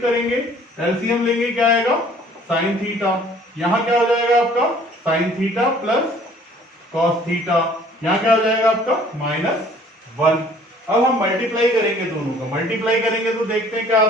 एलसीएम लेंगे, क्या आएगा, साइन थीटा, यहां क्या हो जाएगा आपका, sine theta plus cos theta, यहां क्या हो जाएगा आपका माइनस 1। अब हम मल्टीप्लाई करेंगे दोनों का, मल्टीप्लाई करेंगे तो देखते हैं क्या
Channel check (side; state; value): both; normal; correlation 0.55